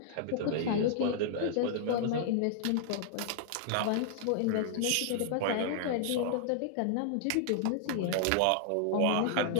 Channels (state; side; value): different; both; correlation -0.01